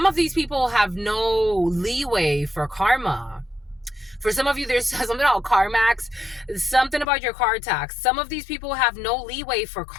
of these people have no leeway for karma. For some of you, there's something about CarMax, something about your car tax. Some of these people have no leeway for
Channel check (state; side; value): drops out; right; at 7.1 s